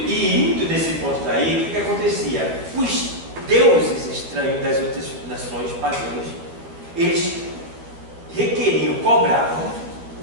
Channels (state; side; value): late; left; 12 ms